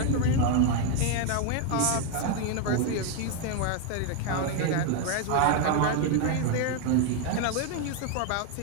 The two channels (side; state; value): both; different; correlation 0.01